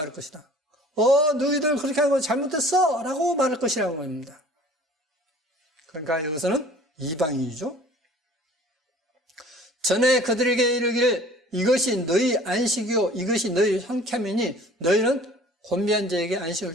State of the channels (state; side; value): normal; both; correlation 0.49